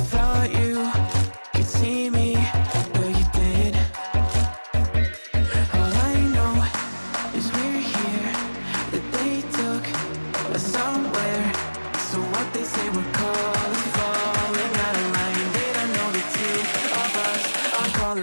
you could see me, but you did. All I know is we're here, that they took us somewhere. So what they say we're called is falling out of line. They don't know the two of us are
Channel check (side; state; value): both; inverted; correlation -1.00